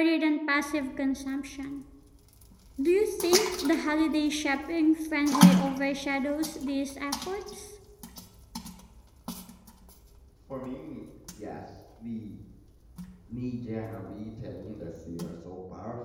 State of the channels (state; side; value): identical; both; correlation 1.00